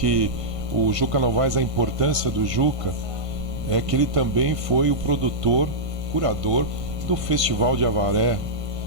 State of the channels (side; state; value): left; late; 1.5 ms